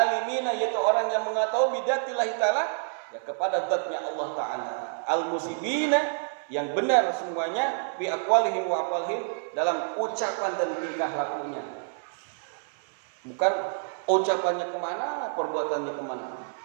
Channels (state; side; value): silent; left; 58 dB below the other